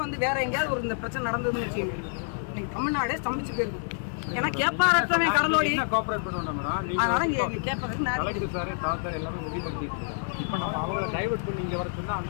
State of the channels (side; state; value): right; silent; 59 dB below the other